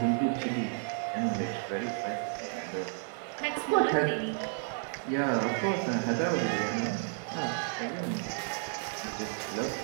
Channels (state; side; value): silent; left; 57 dB below the other